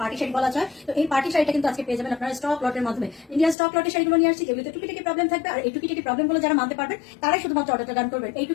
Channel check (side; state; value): right; drops out; at 3.6 s